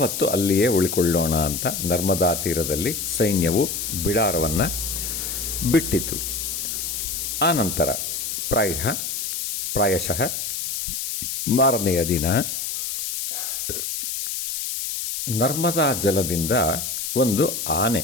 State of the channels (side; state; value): left; noise; hiss, 4 dB below the sound